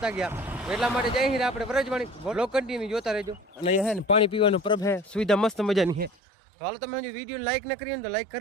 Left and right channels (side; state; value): left; drops out; at 6.1 s